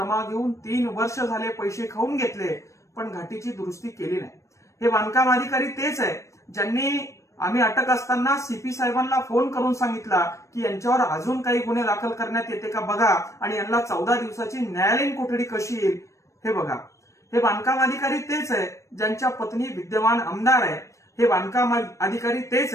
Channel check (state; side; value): late; right; 0.15 ms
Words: घेऊन 3 वर्ष झाले पैसे खाऊन घेतले, पण घाटीची दुरुस्ती केली नाही। हे बांधकाम अधिकारी तेच आहे ज्यांनी आम्ही अटक असताना सीपी साहेबांना फोन करून सांगितला की यांच्यावर अजून काही गुन्हे दाखल करण्यात येते का बघा आणि यांना 14 दिवसाची न्यायालयीन कोठडी कशी येईल हे बघा। हे बांधकाम अधिकारी तेच आहे ज्यांच्या पत्नी विद्यमान आमदार आहे। हे बांधकाम अधिकारी